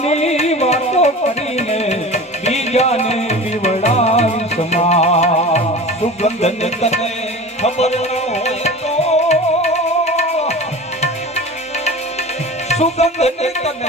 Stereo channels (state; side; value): normal; both; correlation 0.35